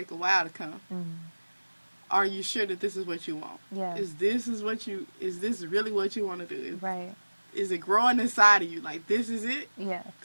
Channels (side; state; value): both; inverted; correlation -1.00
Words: a while to come. Are you sure that this is what you want? Yeah. Is this really what you want to do? Right. Is it growing inside of you? Like, this is it? Yeah.